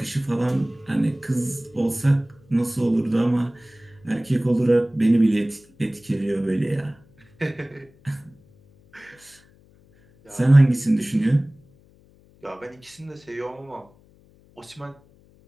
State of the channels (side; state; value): left; noise; hum, 29 dB below the sound